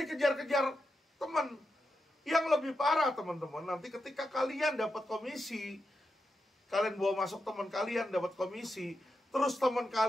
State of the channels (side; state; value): both; normal; correlation 0.87